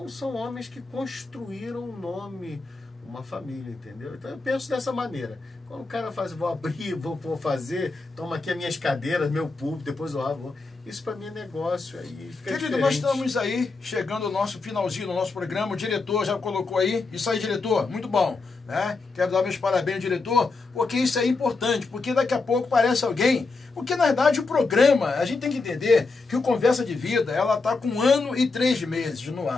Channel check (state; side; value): quieter; right; 3.9 dB